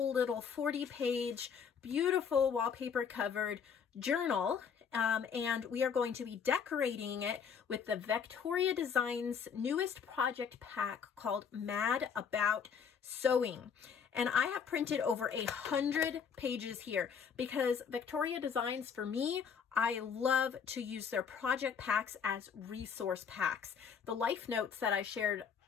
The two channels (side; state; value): right; quieter; 6.8 dB